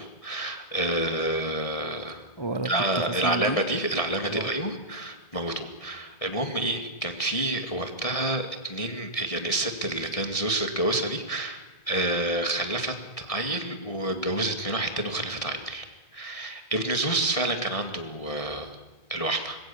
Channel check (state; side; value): late; right; 1.6 ms